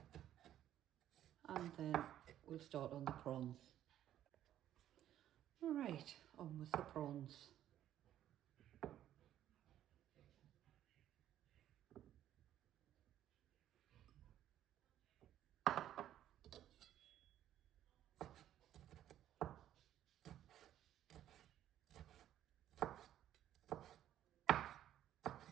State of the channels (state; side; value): quieter; left; 11.7 dB